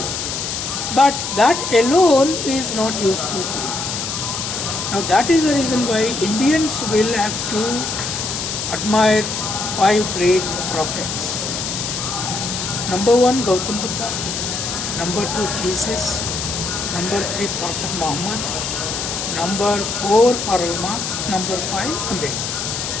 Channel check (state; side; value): noise; left; hiss, 4 dB below the sound